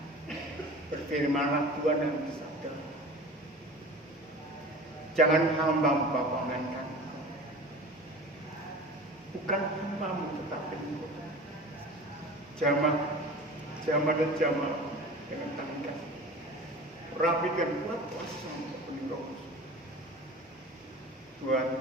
Berfirmanlah Tuhan dan bersabda, jangan hamba-Mu melainkan Engkau. Bukan hamba-Mu tetapi Engkau. Jamah dan jamah dengan tangan kasih. Rapi dan kuat kuasa untuk penuh Roh Kudus. Tuhan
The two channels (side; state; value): both; normal; correlation 0.38